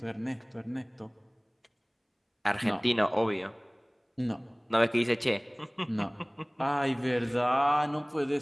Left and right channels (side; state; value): both; identical; correlation 1.00